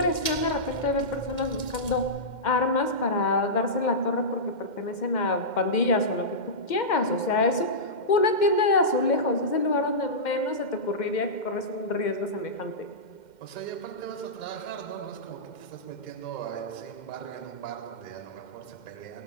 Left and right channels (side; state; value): right; late; 2.1 ms